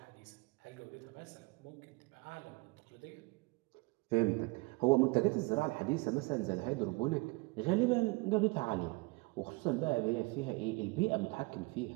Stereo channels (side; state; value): left; quieter; 25.9 dB